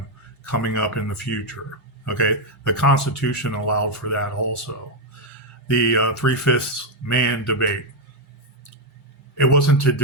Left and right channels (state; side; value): normal; both; correlation 0.02